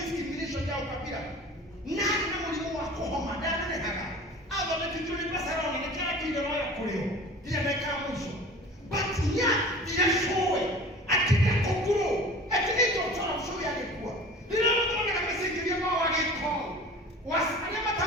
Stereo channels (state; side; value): normal; both; correlation 0.40